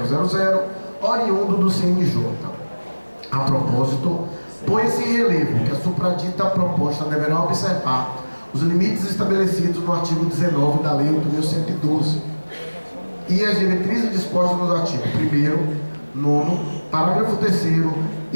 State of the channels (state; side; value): inverted; both; correlation -1.00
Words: oriundo do CNJ. A propósito, põe-se em relevo que a supradita proposta deverá observar os limites estabelecidos no artigo 19 da Lei 8.112 e as diretrizes dispostas nos artigos 1º, 9º, parágrafo 3º